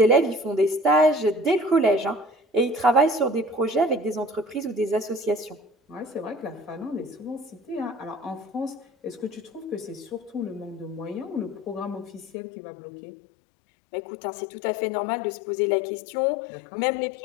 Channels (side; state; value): right; drops out; at 12.3 s